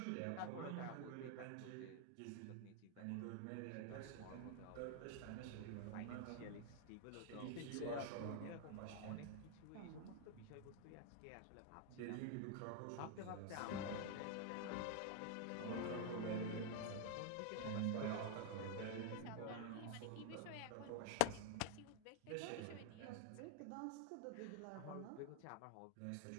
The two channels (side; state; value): both; different; correlation 0.00